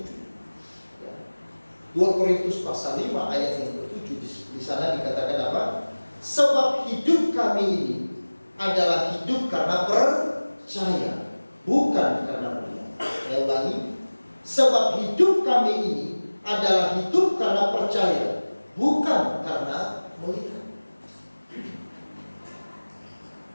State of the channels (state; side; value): inverted; both; correlation -1.00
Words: 2 Korintus pasal 5 ayat yang ke-7, di sana dikatakan apa? Sebab hidup kami ini adalah hidup karena percaya, bukan karena melihat. Saya ulangi, sebab hidup kami ini adalah hidup karena percaya, bukan karena melihat.